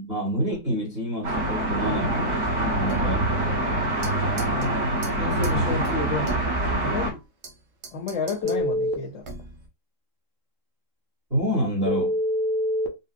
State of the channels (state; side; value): late; left; 3.7 ms